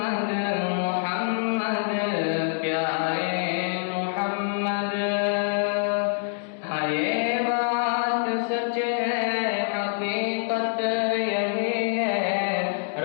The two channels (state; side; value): silent; right; digital silence